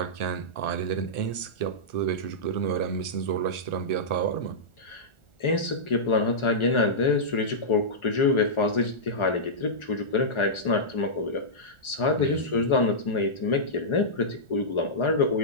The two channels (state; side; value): late; right; 1.4 ms